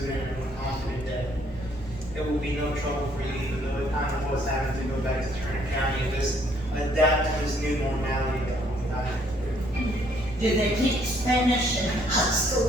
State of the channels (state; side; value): normal; both; correlation 0.66